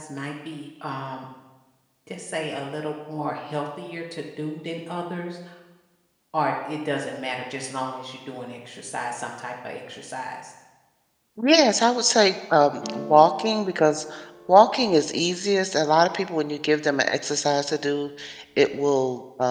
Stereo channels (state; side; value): identical; both; correlation 1.00